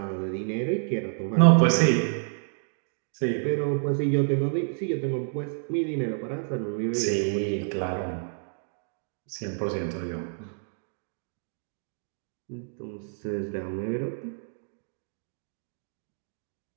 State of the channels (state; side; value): silent; left; digital silence